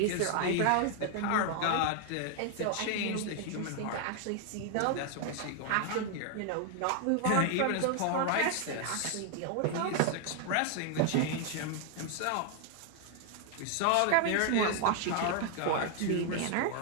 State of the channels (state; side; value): different; both; correlation 0.00